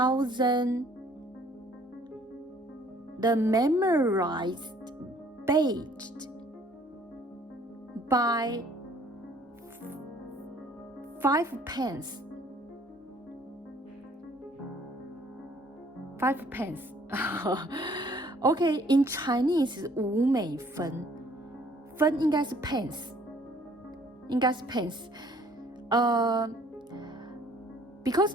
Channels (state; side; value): normal; both; correlation 0.58